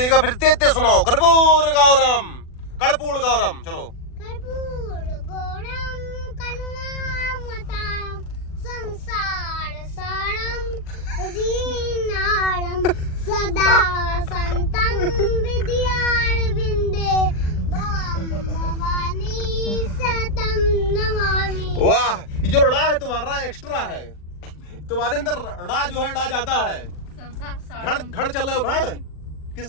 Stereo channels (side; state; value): right; late; 40 ms